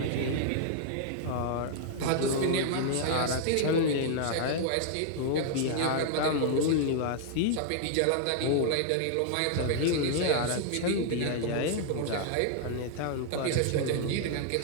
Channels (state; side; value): different; both; correlation 0.00